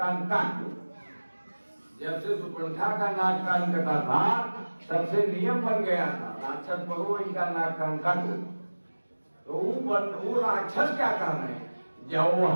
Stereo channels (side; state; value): both; inverted; correlation -1.00